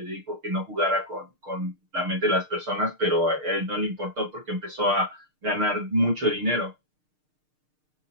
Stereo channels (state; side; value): late; left; 6.6 ms